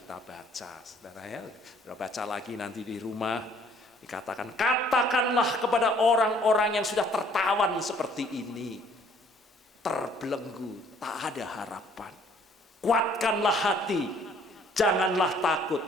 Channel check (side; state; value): both; normal; correlation 0.60